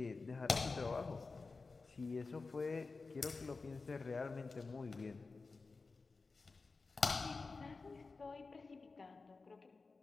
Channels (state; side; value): quieter; right; 4.0 dB